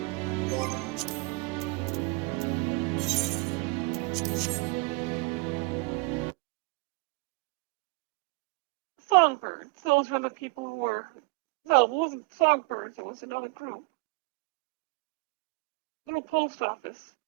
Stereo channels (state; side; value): quieter; left; 26.2 dB